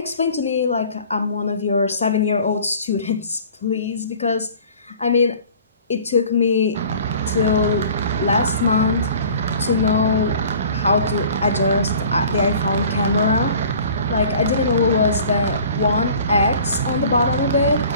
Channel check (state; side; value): inverted; both; correlation -0.47